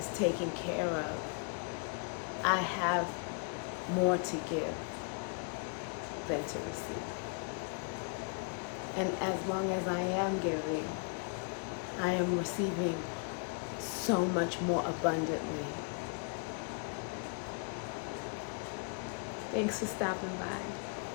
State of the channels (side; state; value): right; quieter; 36.0 dB